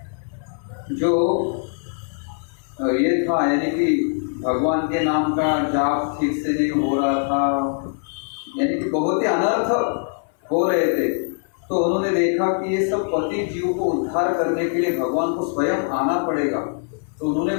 जो ये था, यानी कि भगवान के नाम का जाप ठीक से नहीं हो रहा था, यानी कि बहुत ही अनर्थ हो रहे थे। तो उन्होंने देखा कि ये सब पतित जीव को उद्धार करने के लिए भगवान को स्वयं आना पड़ेगा। तो उन्होंने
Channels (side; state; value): right; silent; 61 dB below the other